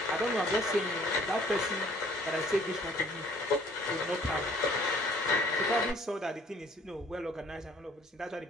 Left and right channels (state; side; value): normal; both; correlation 0.57